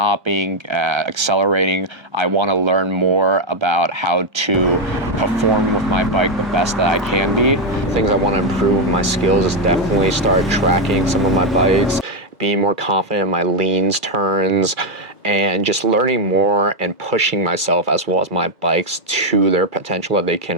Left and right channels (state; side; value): normal; both; correlation 0.02